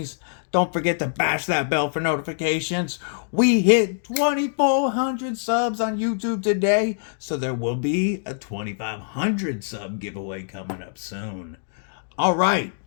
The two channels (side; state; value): right; silent; digital silence